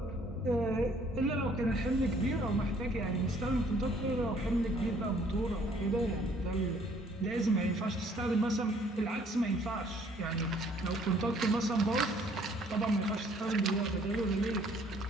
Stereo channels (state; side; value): normal; both; correlation 0.61